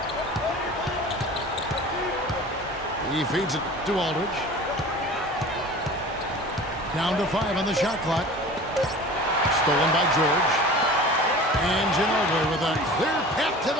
He feeds it to Aldridge. Down to 5 on the shot clock. Stolen by George. And Ginobili with a clear path to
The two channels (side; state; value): both; normal; correlation 0.40